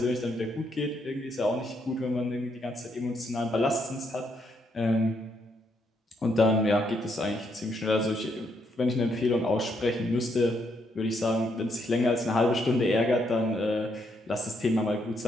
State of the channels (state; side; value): normal; both; correlation 0.75